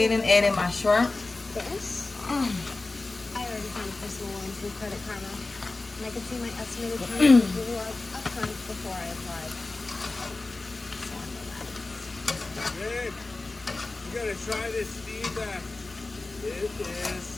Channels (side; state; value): right; quieter; 3.3 dB